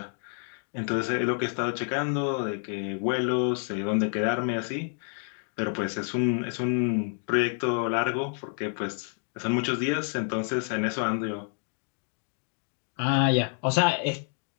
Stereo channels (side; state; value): right; silent; 55 dB below the other